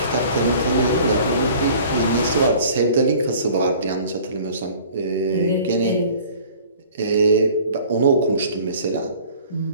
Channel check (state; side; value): inverted; both; correlation -0.48